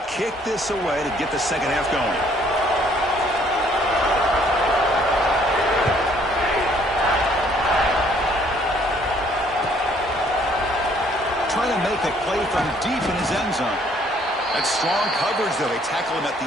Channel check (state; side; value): normal; both; correlation 0.63